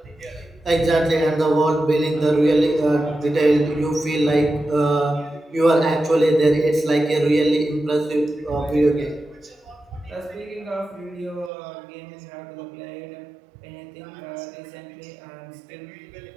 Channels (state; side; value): drops out; left; at 11.5 s